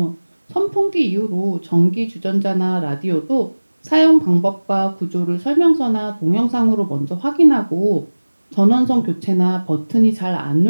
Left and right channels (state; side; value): inverted; both; correlation -1.00